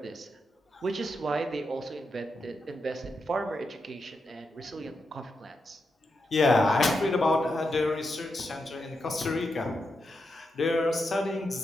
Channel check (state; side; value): normal; both; correlation 0.86